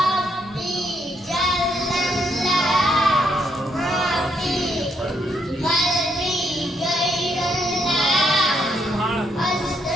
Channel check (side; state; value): both; normal; correlation 0.75